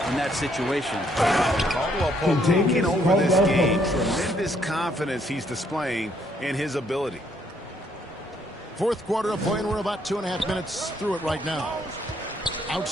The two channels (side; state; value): both; normal; correlation 0.69